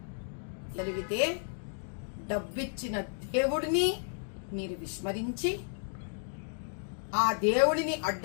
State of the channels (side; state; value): right; silent; digital silence